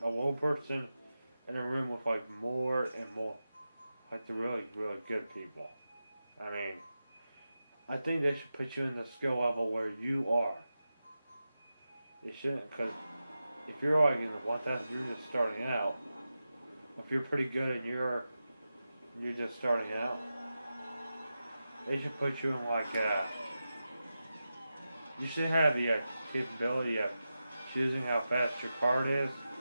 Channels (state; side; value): inverted; both; correlation -0.92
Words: a low person in a room with like more and more, like the really, really good people. I mean, I think they should put you in the skill level where you are. They shouldn't, because if you're like in the 1,000, you're just starting out. If you're pretty good and you're just starting out, they should put you in like you should have the capability of choosing how fast your card is.